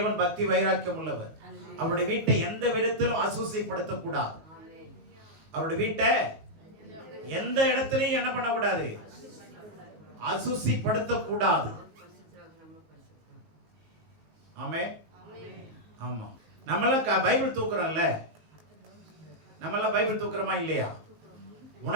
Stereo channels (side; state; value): left; late; 19 ms